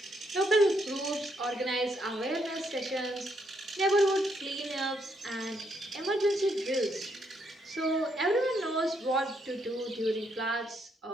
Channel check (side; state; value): both; normal; correlation 0.75